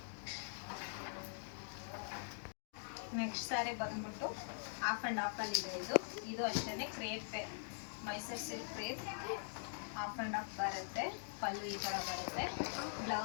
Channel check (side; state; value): right; silent; digital silence